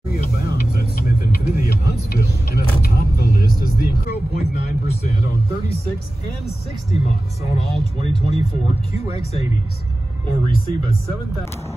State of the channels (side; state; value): both; normal; correlation 0.96